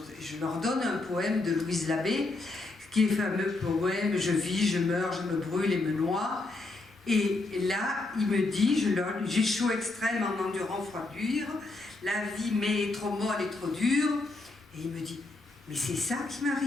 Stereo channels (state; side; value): quieter; right; 3.1 dB